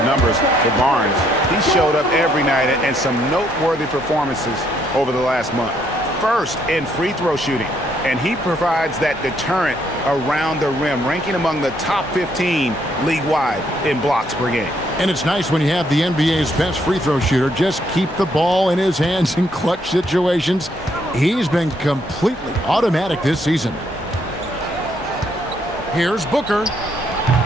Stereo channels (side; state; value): both; normal; correlation 0.71